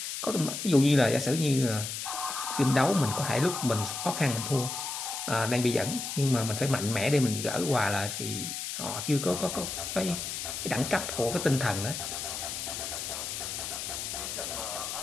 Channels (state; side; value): noise; left; hiss, 5 dB below the sound